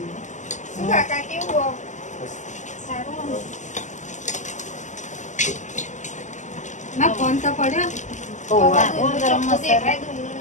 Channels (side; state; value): right; late; 0.35 ms